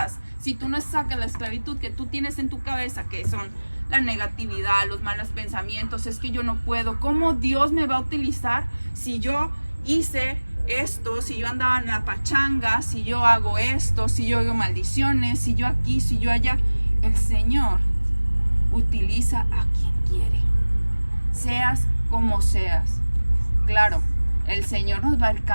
si tú no sacas la esclavitud que tú tienes en tu cabeza, que son la negatividad, los malos pensamientos, es que yo no puedo, ¿cómo Dios me va a utilizar si yo hice esto, si yo andaba en la pachanga, si yo hago esto, si yo hago maldiciones, si yo aquí, si yo allá? El Señor utiliza a quien quiere, seas como seas. Claro, el Señor nos va a ir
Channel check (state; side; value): inverted; both; correlation -1.00